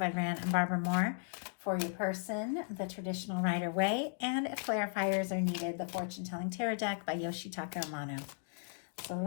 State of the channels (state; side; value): silent; right; digital silence